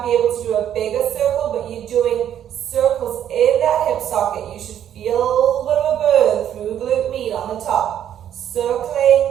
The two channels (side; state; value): left; quieter; 10.2 dB